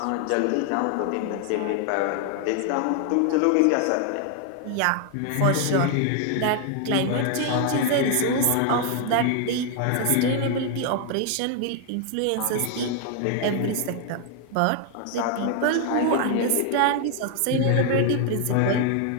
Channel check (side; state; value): both; different; correlation 0.00